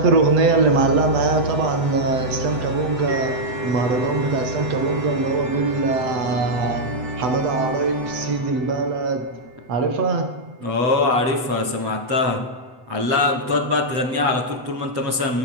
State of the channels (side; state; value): left; late; 8.0 ms